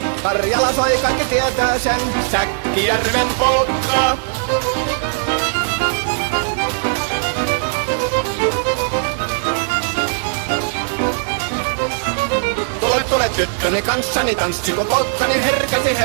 Karjala soi, kaikki tietää sen. Säkkijärven polkkaa. Tule tyttöni kanssani tanssi, kun polkkani herkäsi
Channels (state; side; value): silent; left; digital silence